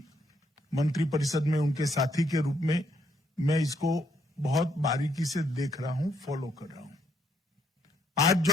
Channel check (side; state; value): both; normal; correlation 0.73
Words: मंत्रिपरिषद में उनके साथी के रूप में मैं इसको बहुत बारीकी से देख रहा हूं, फॉलो कर रहा हूं। आज